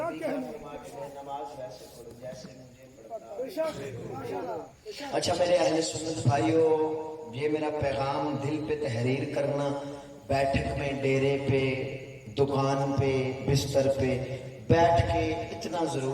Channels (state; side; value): identical; both; correlation 1.00